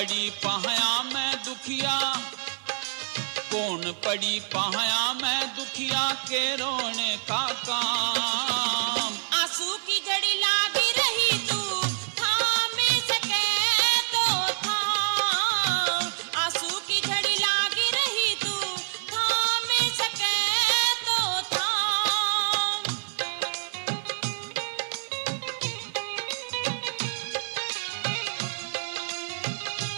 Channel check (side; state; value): left; silent; 60 dB below the other